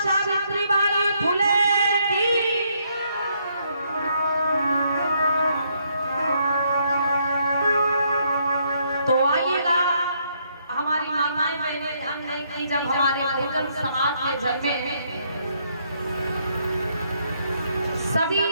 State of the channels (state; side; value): inverted; both; correlation -0.72